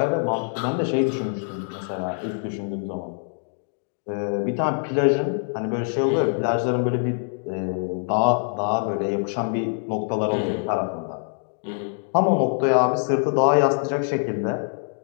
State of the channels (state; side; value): silent; right; digital silence